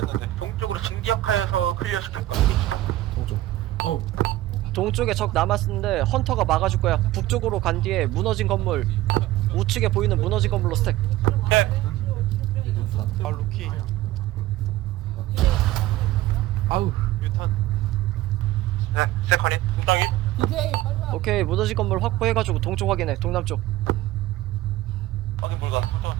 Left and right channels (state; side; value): quieter; left; 15.7 dB